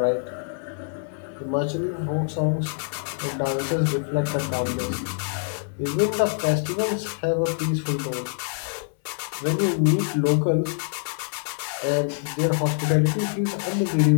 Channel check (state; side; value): silent; right; 62 dB below the other